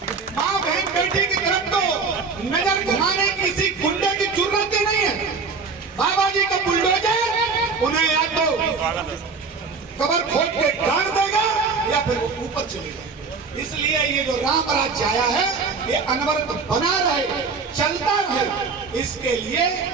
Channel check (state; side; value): quieter; left; 4.8 dB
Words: माँ बहन बेटी की तरफ तो नजर घुमाने किसी गुंडे की जरूरत ही नहीं है। बाबा जी का बुलडोजर उन्हें या तो कबर खोद के गाड़ देगा या फिर वो ऊपर चलेगा। इसलिए ये जो राम राज्य आया है ये अनवरत बना रहे, चलता रहे, इसके लिए